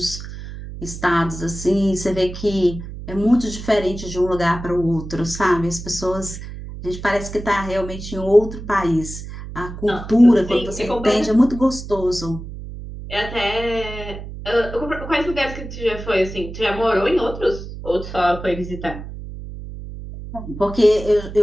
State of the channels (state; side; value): noise; right; hum, 10 dB below the sound